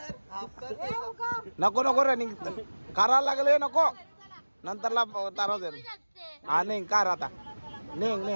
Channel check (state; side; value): inverted; both; correlation -1.00